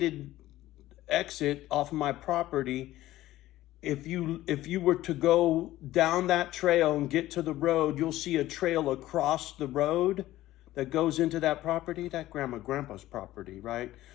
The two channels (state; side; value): quieter; right; 15.4 dB